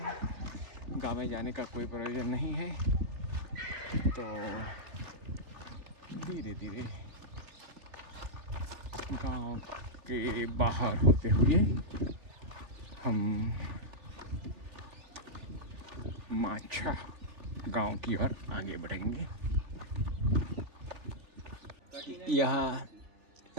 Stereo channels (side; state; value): left; late; 3.4 ms